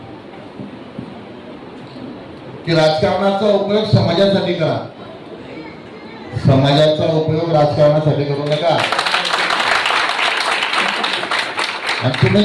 की राजकारणाचा उपयोग समाजासाठी करा, समाजाचा उपयोग राजकारणासाठी करू नका. आणि तुम्ही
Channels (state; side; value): identical; both; correlation 1.00